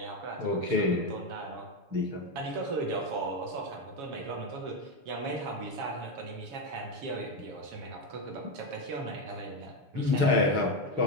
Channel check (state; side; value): late; left; 6.5 ms